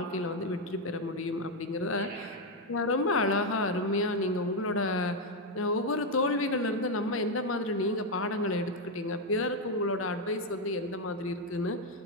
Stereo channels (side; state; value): both; normal; correlation 0.04